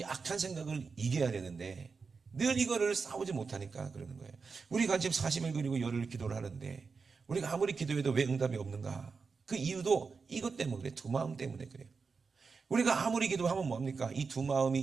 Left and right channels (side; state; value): left; quieter; 4.9 dB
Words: 악한 생각을 이겨야 되는데, 늘 이거를 싸우지 못하니까 그러는 거예요. 우리가 지금 40일 그리고 열흘 기도를 하는데, 우리가 아무리 기도해도 왜 응답이 없는가? 그 이유도 이것 때문에 그래요. 두 마음 때문에 그래요. 우리가 아무리 기도하면 뭡니까? 이 두 마음이